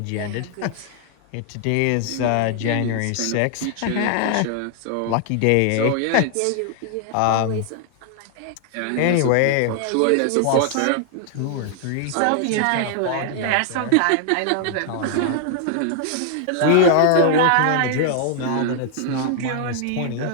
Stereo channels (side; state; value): both; different; correlation 0.00